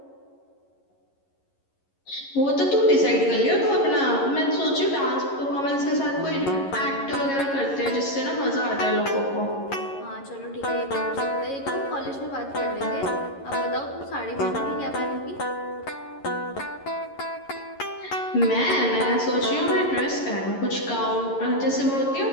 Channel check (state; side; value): late; right; 11 ms